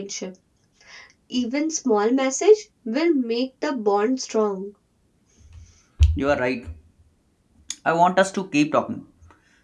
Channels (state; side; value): identical; both; correlation 1.00